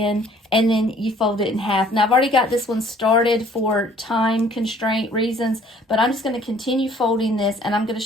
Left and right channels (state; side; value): normal; both; correlation 0.57